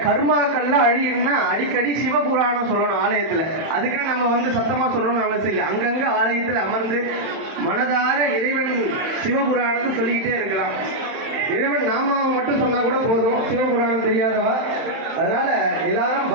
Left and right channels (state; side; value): late; left; 31 ms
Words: கர்மாக்கள்லாம் அழியும்னா அடிக்கடி சிவபுராணம் சொல்லணும் ஆலயத்துல. அதுக்கு நம்ம சத்தமா சொல்லணும்னு அவசியம் இல்லை. அங்கங்க ஆலயத்துல அமர்ந்து மனதார இறைவன் சிவபுராணத்தை சொல்லிக்கிட்டே இருக்கலாம். இறைவன் நாமாவை மட்டும் சொன்னா கூட போதும், சிவபுராணம் தெரியாதவா. அதனால எல்லாரும்